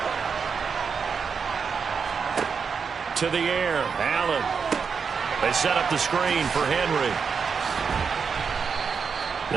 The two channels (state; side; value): quieter; left; 5.9 dB